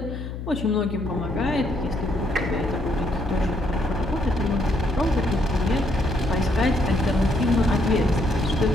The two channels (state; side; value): noise; left; hum, 7 dB below the sound